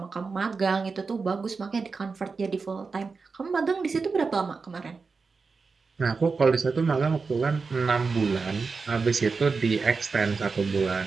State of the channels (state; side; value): quieter; left; 4.6 dB